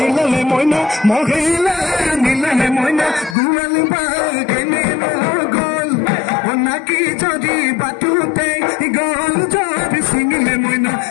মহিলা নিলে মইনা গুৱালি বা কেনে গল নাকি যদি বাটুতে গল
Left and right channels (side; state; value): right; drops out; at 3.4 s